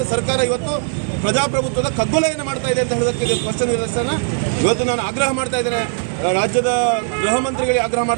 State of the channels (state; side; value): silent; left; 60 dB below the other